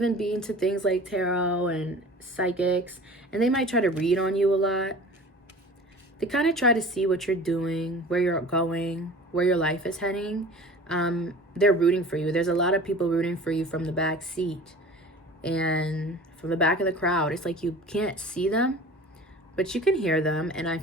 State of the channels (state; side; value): normal; both; correlation 0.41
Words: be into things like tarot and psychics, and they might try to read on you a lot. They kind of try to see what you're doing, where you're going, where your life is heading. They're rooting for you. There's a lot of people rooting for you from the back seat and from the back of the crowd. It's like you can't see them, but you can hear them. And I